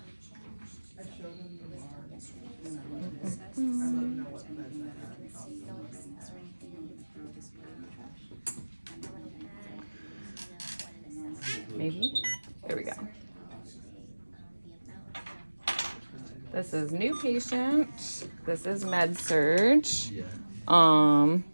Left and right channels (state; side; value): inverted; both; correlation -1.00